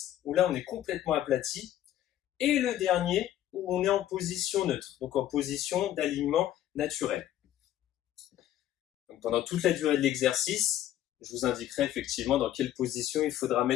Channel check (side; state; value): right; quieter; 12.4 dB